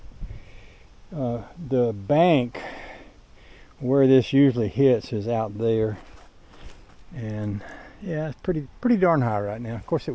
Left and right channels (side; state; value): both; identical; correlation 1.00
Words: the bank where this usually hits is out there, and yeah, it's pretty darn high right now. Of course it